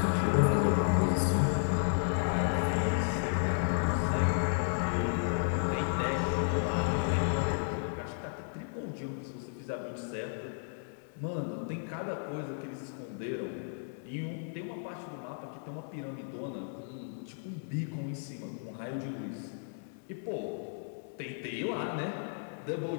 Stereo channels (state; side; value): silent; right; digital silence